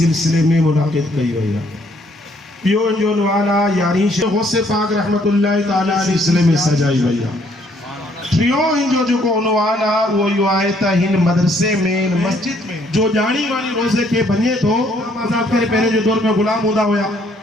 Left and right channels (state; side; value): normal; both; correlation 0.66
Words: में मुनाकिद कई वही है पियो जो उन्वान यानी गौसे पाक रहमतुल्लाहि ताला सिलसिले में सजाई वही है प्रियो जो को उन्वान वो यो आए त हिन मदरसे में मस्जिद में जो जानी वाली रोजे के बने तो आजाद करे पहले जो दौर में गुलाम होदा होया